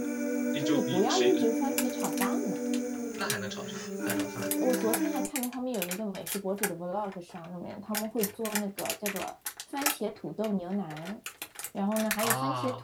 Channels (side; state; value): both; identical; correlation 1.00